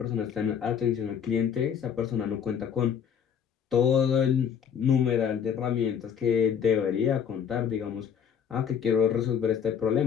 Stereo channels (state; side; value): quieter; right; 7.8 dB